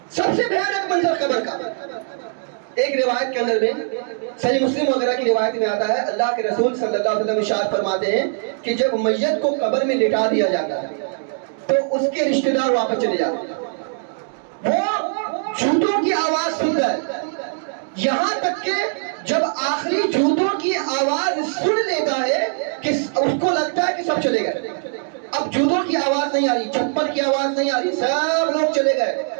سب سے بھیانک منظر قبر کا. ایک روایت کے اندر میں صحیح مسلم وغیرہ کی روایت میں آتا ہے اللہ کے رسول صلی اللہ علیہ وسلم ارشاد فرماتے ہیں کہ جب میت کو قبر میں لٹا دیا جاتا ہے تو اس کے رشتہ دار واپس چلے جاتے ہیں. وہ جوتوں کی آواز سنتا ہے یہاں تک کہ جب آخری جوتوں کی آواز سن لیتا ہے کہ اس کو لگتا ہے کہ سب چلے گئے. اب جوتوں کی آواز نہیں آ رہی, چپل کی آواز نہیں آ رہی, سب لوگ چلے گئے.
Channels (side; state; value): left; silent; 65 dB below the other